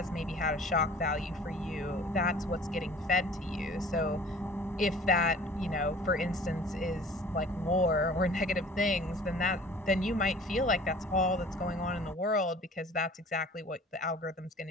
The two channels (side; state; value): both; normal; correlation 0.47